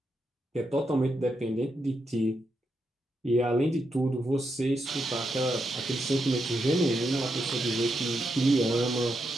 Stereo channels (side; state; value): both; normal; correlation 0.83